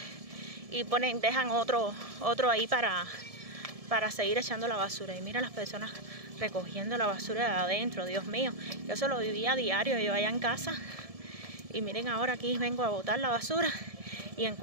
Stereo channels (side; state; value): left; late; 1.7 ms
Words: y dejan otro ahí para seguir echando la basura. Y mira las personas recogiendo la basura de adentro, Dios mío. Yo eso lo vivía a diario, yo allá en casa. Y miren, ahora aquí vengo a botar la basura y